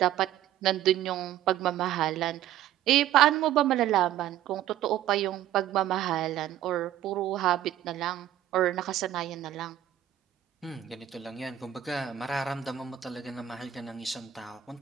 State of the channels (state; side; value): quieter; left; 12.0 dB